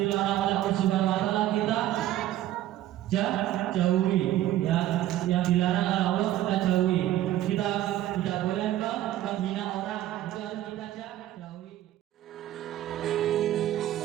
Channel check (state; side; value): quieter; left; 13.4 dB